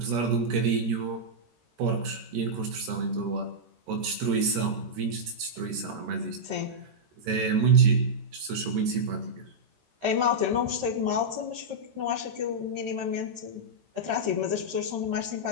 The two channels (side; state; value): left; late; 13 ms